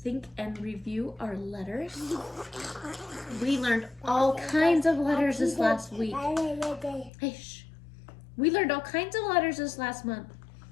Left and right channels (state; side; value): drops out; right; at 7.1 s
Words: and review our letters? We learned all kinds of letters this last week. Hey, shh. We learned all kinds of letters this last month.